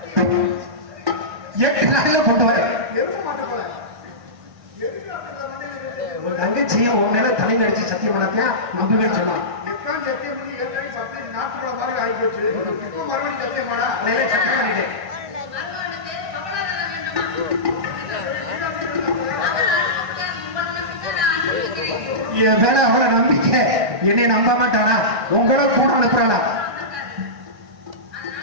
8 நாள்ல போட்டு வர ஒரு தங்கச்சியை உன் மேல தலையில அடிச்சு சத்தியம் பண்ணத்தியா நம்பவே சொன்னான். என் மேல அவளை நம்பிக்கை, என்னை நம்ப மாட்டானா? உங்களோட கூட அனுப்புறானா?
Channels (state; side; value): late; left; 1.6 ms